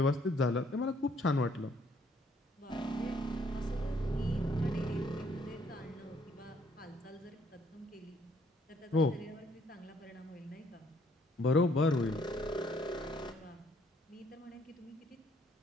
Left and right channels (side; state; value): both; normal; correlation 0.66